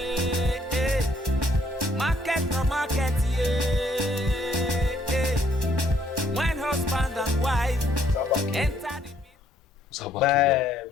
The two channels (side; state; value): both; normal; correlation 0.67